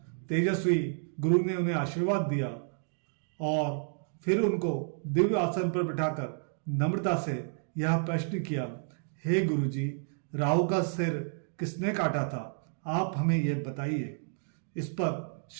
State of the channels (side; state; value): left; silent; 57 dB below the other